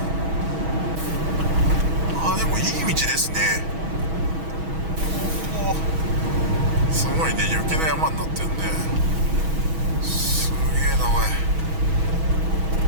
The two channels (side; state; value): left; late; 6.2 ms